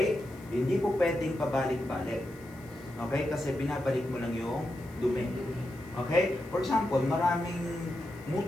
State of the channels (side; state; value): left; noise; hiss, 26 dB below the sound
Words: Hindi po pwedeng pabalik-balik. Okay? Kasi binabalik mo lang yung dumi. Okay? For example, maraming